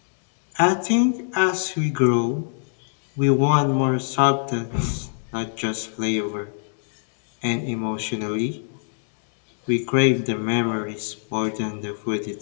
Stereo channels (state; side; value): silent; right; digital silence